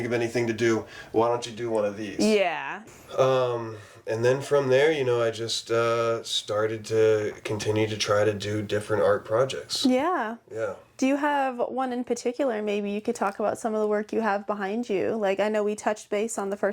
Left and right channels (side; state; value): both; identical; correlation 1.00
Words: of anything to do. Why don't you do one of these? Yeah. And then from there, I just started to continue to try to do different art projects. Yeah. Yeah. Do you have one in particular? Maybe you could talk about some of the work you have behind you. Like, I know we touched base on the